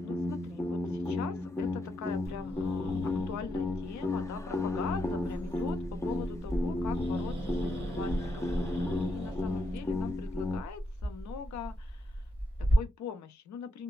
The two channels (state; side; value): normal; both; correlation 0.81